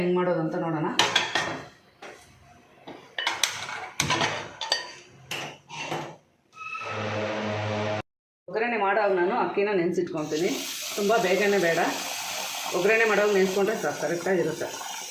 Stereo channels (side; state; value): both; identical; correlation 1.00